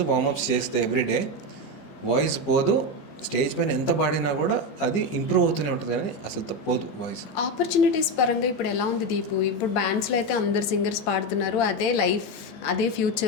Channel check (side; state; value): right; late; 14 ms